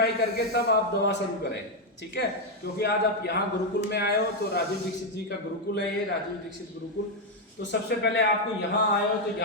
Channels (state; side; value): normal; both; correlation 0.03